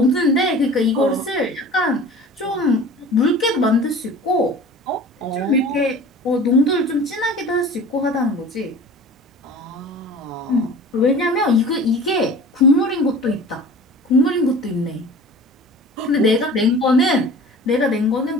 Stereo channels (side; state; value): both; normal; correlation 0.41